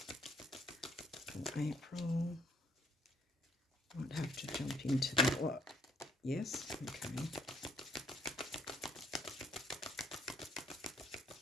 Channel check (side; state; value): both; normal; correlation 0.65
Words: for April? Might have to jump into the what? Yes, okay.